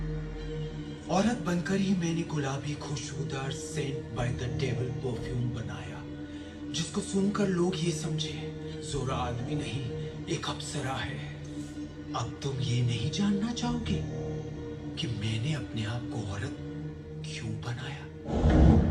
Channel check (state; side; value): identical; both; correlation 1.00